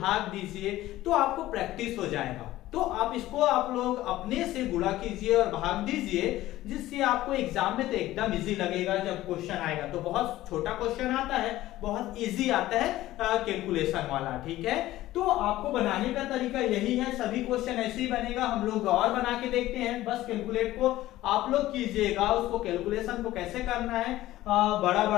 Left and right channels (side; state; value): right; quieter; 15.7 dB